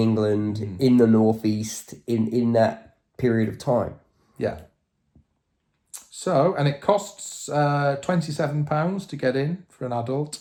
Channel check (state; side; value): identical; both; correlation 1.00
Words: in the northeast, in that period of time. Yeah. So, and it costs £27 to get in for an adult.